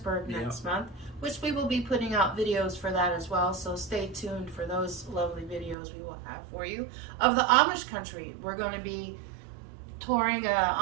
next month, which we will be putting out videos for that as well. So stay tuned for those lovely videos we will have for you of the Amish country. We're going to be touring an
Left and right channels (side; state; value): left; drops out; at 5.8 s